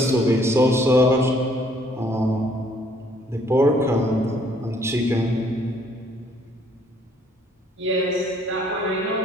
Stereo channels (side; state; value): both; normal; correlation 0.63